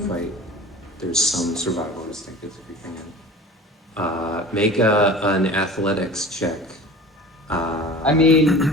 There's some survival instinct that's creeping in. Make an athletics check. I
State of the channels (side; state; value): both; normal; correlation 0.38